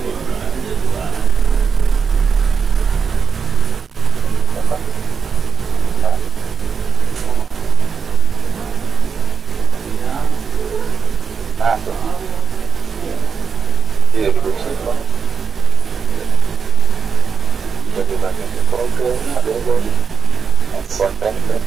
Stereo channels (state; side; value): quieter; left; 6.0 dB